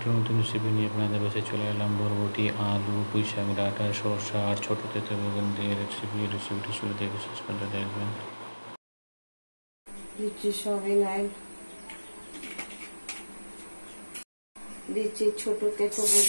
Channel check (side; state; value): both; inverted; correlation -1.00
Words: নতুন রেসিপি নিয়ে আপনাদের কাছে চলে এলাম। বরবটি, আলু, পুঁইশাক ডাঁটা, সরষা আর ছোটো তেঁতুল বেগুন দিয়ে রেসিপিটি শুরু থেকে শেষ পর্যন্ত দেখবেন। দিচ্ছি সয়াবিন অয়েল, দিচ্ছি ছোটো তেঁতুল